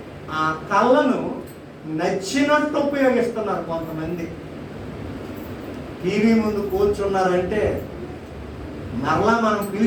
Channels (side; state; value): both; identical; correlation 1.00